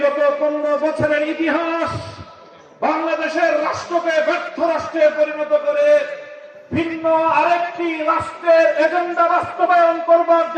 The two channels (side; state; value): both; identical; correlation 1.00